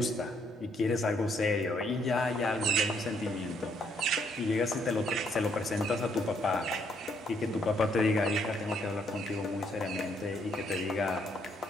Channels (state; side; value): normal; both; correlation 0.70